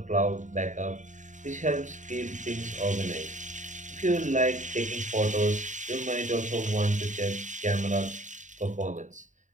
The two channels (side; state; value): left; late; 0.36 ms